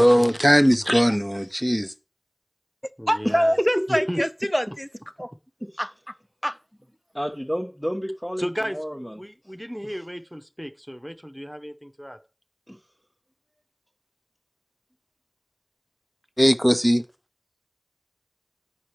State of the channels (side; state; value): both; identical; correlation 1.00